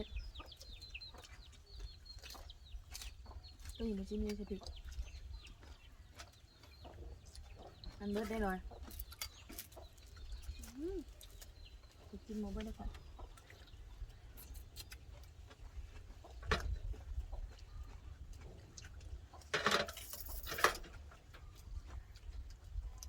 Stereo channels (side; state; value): both; identical; correlation 1.00